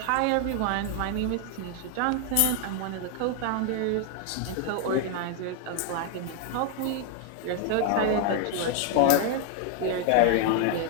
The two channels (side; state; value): both; different; correlation 0.00